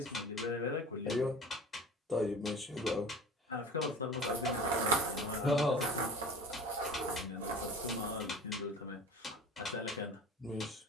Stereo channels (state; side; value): normal; both; correlation 0.38